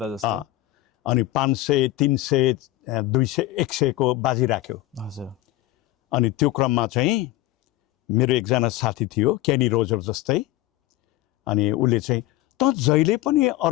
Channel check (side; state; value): right; quieter; 16.7 dB